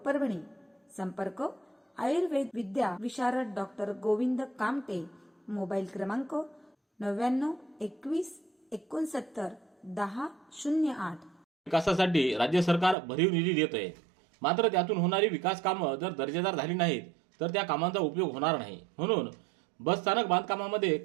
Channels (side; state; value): left; drops out; at 13.0 s